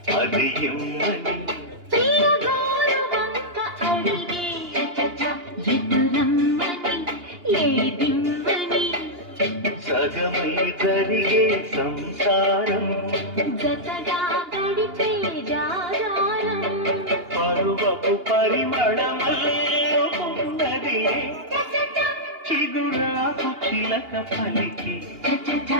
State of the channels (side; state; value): left; late; 2.8 ms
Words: అది ఇమ్మని సగమై జరిగే సంసారం జతగా గడిపే జాగారం పరువపు పరిమళమల్లే చిగురాకు చిలక పలికి